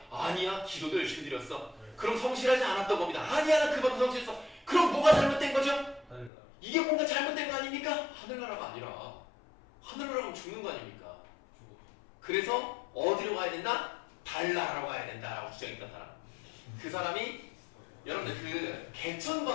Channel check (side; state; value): right; drops out; at 6.3 s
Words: 아니야. 기도도 열심히 드렸어. 그럼 성실하지 않았던 겁니다. 아니야. 나 그만큼 성실했어. 그럼 뭐가 잘못된 거죠? 하늘나라. 이게 뭔가 잘못된 거 아닙니까? 하늘나라가 아니라 하늘나라면 죽는 거 아닙니까? 죽었죠. 그래서 어디로 가야 된다? 달나라로 가야 된다라고 주장했던 사람. 그 사람이 여러분들 그 개천